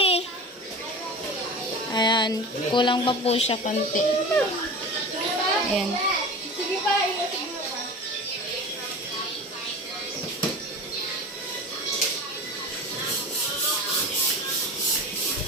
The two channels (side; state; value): both; normal; correlation 0.33